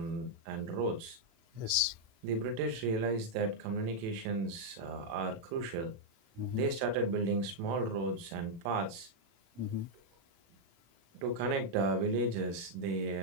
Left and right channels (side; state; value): left; late; 37 ms